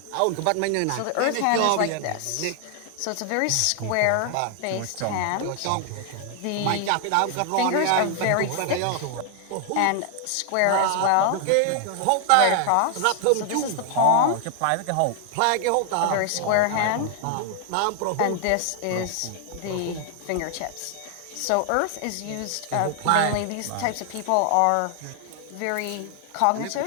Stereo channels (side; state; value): both; different; correlation 0.00